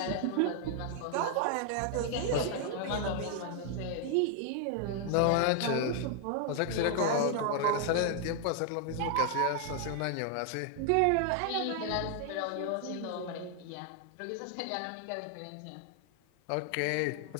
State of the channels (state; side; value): different; both; correlation 0.00